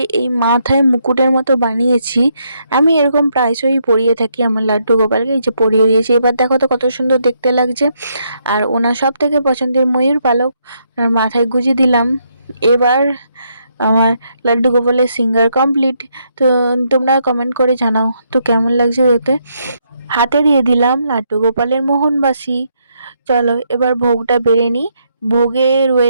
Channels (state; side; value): inverted; both; correlation -0.76